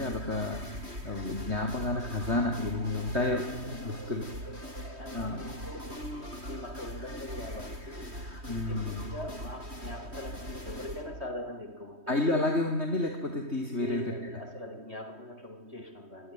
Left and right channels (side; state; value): left; late; 3.2 ms